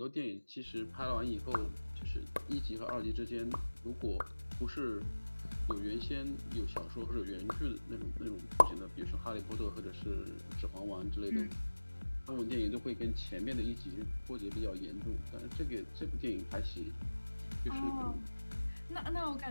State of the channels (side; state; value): both; inverted; correlation -1.00